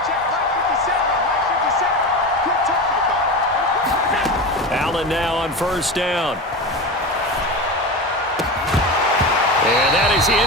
Allen now on 1st down. And that is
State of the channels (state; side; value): normal; both; correlation 0.25